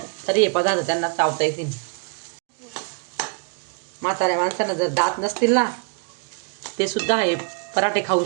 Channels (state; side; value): quieter; left; 37.2 dB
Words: तरी हे पदार्थ त्यांना चावता येतील. म्हाताऱ्या माणसांना जर दात नसतील ना, ते सुद्धा हे पराठे खाऊ